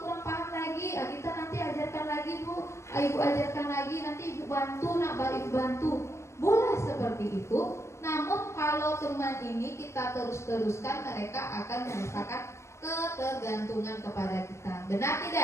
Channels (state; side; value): late; right; 0.13 ms